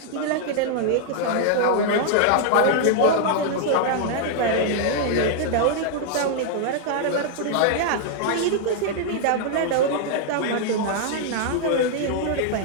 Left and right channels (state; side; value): different; both; correlation -0.01